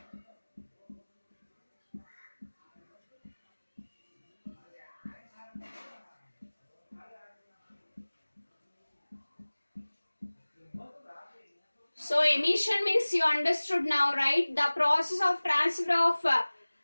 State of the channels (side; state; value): both; inverted; correlation -1.00